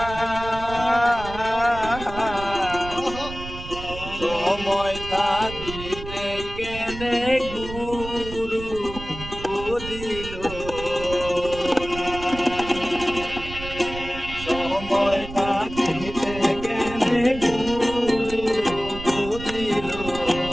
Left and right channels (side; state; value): right; noise; rumble, 11 dB below the sound